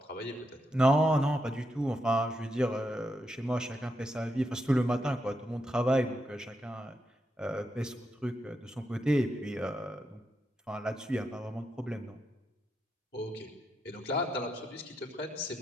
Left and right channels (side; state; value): both; normal; correlation 0.83